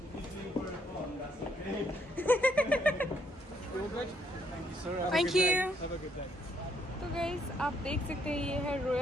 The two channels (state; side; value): normal; both; correlation 0.71